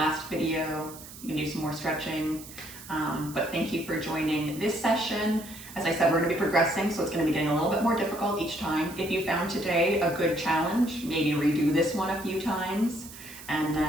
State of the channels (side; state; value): right; noise; hiss, 16 dB below the sound